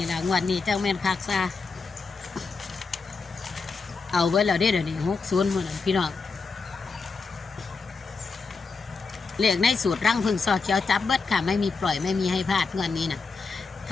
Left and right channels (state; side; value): quieter; right; 4.4 dB